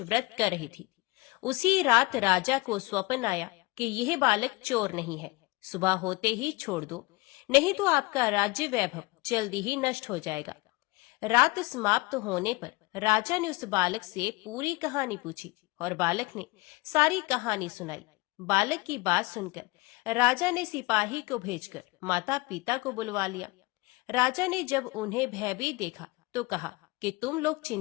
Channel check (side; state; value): right; quieter; 23.1 dB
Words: कर रही थी। उसी रात राजा को स्वप्न आया कि यह बालक चोर नहीं है, सुबह होते ही छोड़ दो, नहीं तो आपका राज्य वैभव जल्दी ही नष्ट हो जाएगा। रात समाप्त होने पर राजा ने उस बालक से पूरी कहानी पूछी और बालक ने सारी कहानी सुनाई। बालक की बात सुनकर राजा ने सिपाही को भेजकर माता पिता को बुलवा लिया। राजा ने जब उन्हें भयभीत देखा तो कहा कि तुम लोग